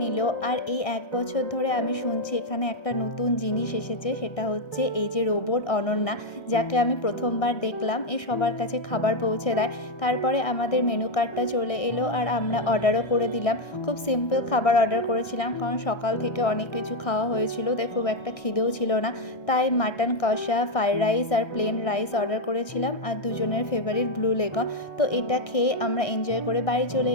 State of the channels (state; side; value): late; right; 1.6 ms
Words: নিল। আর এই 1 বছর ধরে আমি শুনছি এখানে একটা নতুন জিনিস এসেছে, সেটা হচ্ছে এই যে রোবট অনন্যা, যাকে আমি প্রথমবার দেখলাম। এ সবার কাছে খাবার পৌঁছে দেয়। তারপরে আমাদের মেনু কার্ডটা চলে এলো, আর আমরা অর্ডারও করে দিলাম। খুব সিম্পল খাবার অর্ডার করেছিলাম, কারণ সকাল থেকে অনেক কিছু খাওয়া হয়েছিল, তাই খুব একটা খিদেও ছিল না। তাই মাটন কষা, ফ্রাইড রাইস আর প্লেন রাইস অর্ডার করেছিলাম, আর দুজনের ফেভারিট ব্লু লেগন। তো এটা খেয়ে আমরা এনজয় করে বাড়ি চলে